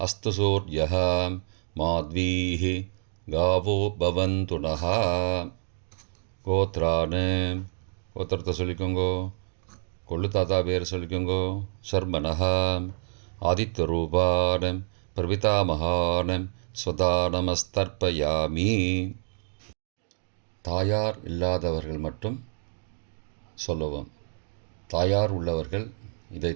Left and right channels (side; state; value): left; silent; digital silence